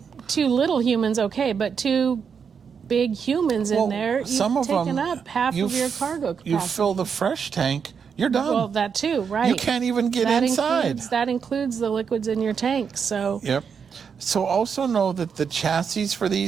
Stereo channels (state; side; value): quieter; left; 6.6 dB